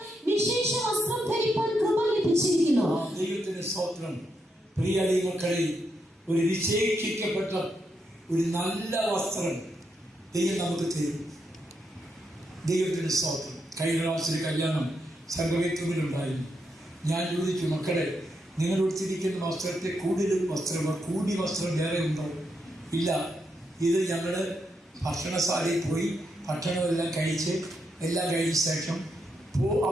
വിശേഷ വസ്ത്രം ധരിപ്പാൻ കൃപ ലഭിച്ചിരിക്കുന്നു. ദൈവത്തിന്റെ സ്തോത്രം. പ്രിയ ദൈവമക്കളെ, ഒരു വിശേഷിക്കപ്പെട്ട ഒരു നല്ല വസ്ത്രം ദൈവം നമുക്ക് തരും. ദൈവത്തിന്റെ സ്തോത്രം. കഴിഞ്ഞ പ്രാവശ്യം കല്യാണം സർവവേത്തുവിലുണ്ടായിരുന്നു. ഞാൻ ചോദിച്ചു, മക്കളെ, നിങ്ങൾ ഉടുത്തിരിക്കുന്ന വസ്ത്രത്തെ കൂടുതൽ വസ്ത്രം, കൂടി വസ്ത്രം വേറെ ഉണ്ടോ? ഇല്ല, ഇത് ഞങ്ങൾ ഭക്ഷണശാലയിൽ പോയി ഭക്ഷണമെല്ലാം കഴിച്ച് എല്ലാം കഴിഞ്ഞ ശേഷം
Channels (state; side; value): normal; both; correlation 0.82